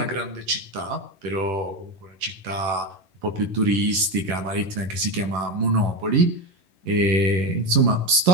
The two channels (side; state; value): left; late; 11 ms